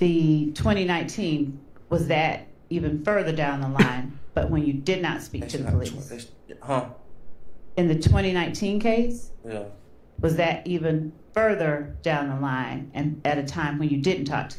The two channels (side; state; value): both; identical; correlation 1.00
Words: 2019, was that even further down the line, but when you did not speak to the police? Huh? In the 2019 case, Yeah. Was that even further down the line and at a time when you didn't talk to